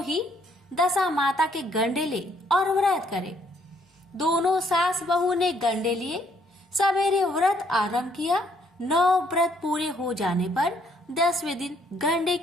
ही दशा माता के गंडे ले और व्रत करें। दोनों सास बहू ने गंडे लिए। सवेरे व्रत आरंभ किया। 9 व्रत पूरे हो जाने पर 10वें दिन गंडे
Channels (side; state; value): both; normal; correlation 0.67